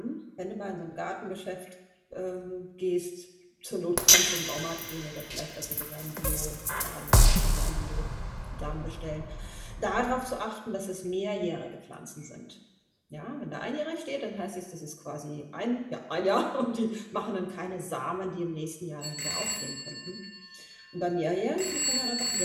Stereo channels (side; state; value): both; identical; correlation 1.00